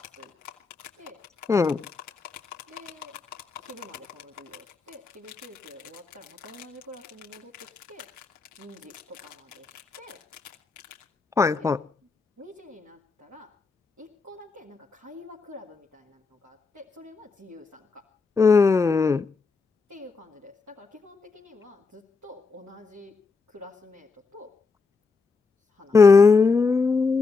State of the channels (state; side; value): quieter; right; 4.6 dB